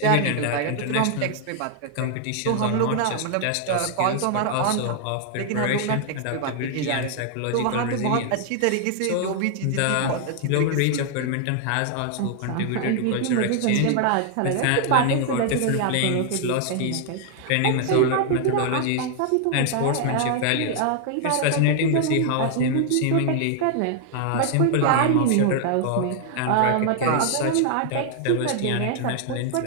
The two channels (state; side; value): different; both; correlation 0.00